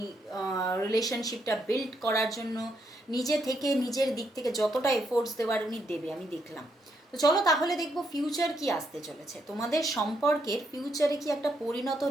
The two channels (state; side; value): normal; both; correlation 0.76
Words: রিলেশনশিপটা বিল্ড করার জন্য নিজে থেকে নিজের দিক থেকে যতটা এফোর্টস দেওয়ার উনি দেবে, আমি দেখলাম। তো চলো তাহলে দেখবো ফিউচার কি আসতে চলেছে, তোমাদের সম্পর্কের ফিউচারে কি একটা পরিণত